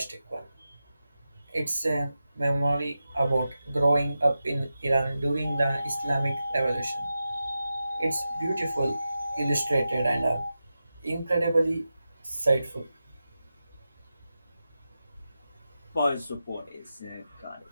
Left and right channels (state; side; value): inverted; both; correlation -0.92